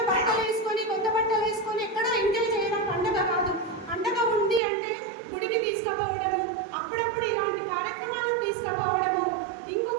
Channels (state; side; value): drops out; left; at 4.6 s